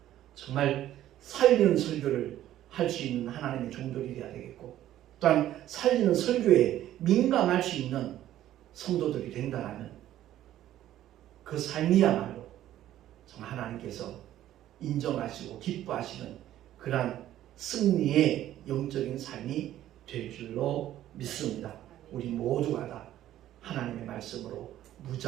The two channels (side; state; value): left; quieter; 12.8 dB